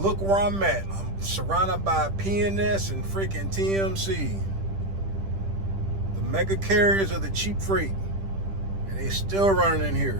where I'm at. I'm surrounded by PNS and freaking TMC. The mega carriers of the cheap freight. And they still running in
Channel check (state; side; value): late; left; 10 ms